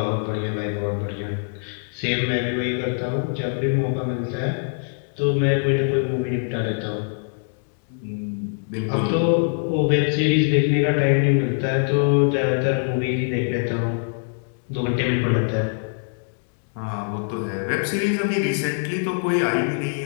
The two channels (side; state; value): right; silent; digital silence